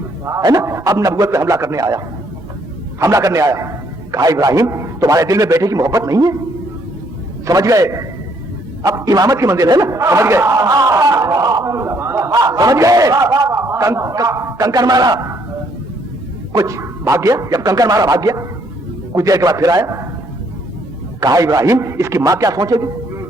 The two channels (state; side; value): normal; both; correlation 0.68